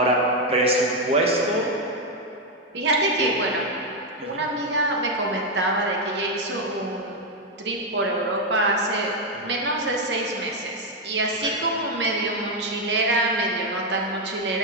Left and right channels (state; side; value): normal; both; correlation 0.04